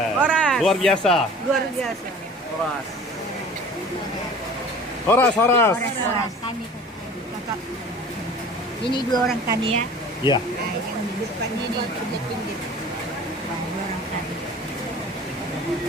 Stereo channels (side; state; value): both; normal; correlation 0.44